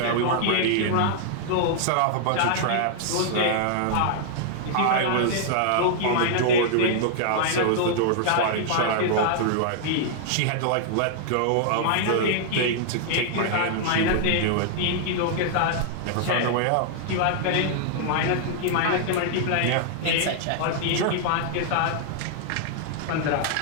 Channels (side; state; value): both; different; correlation -0.01